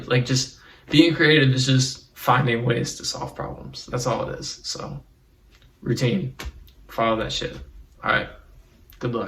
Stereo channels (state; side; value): identical; both; correlation 1.00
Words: Like just being creative is just finding ways to solve problems. That's all it is. So routine, follow that shit. All right, good